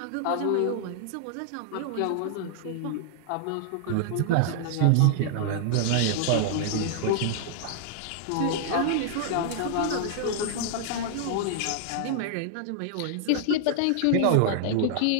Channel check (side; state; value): both; different; correlation -0.01